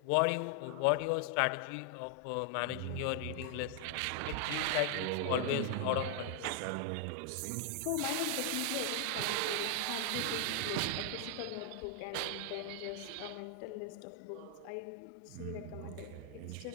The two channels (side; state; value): both; different; correlation 0.00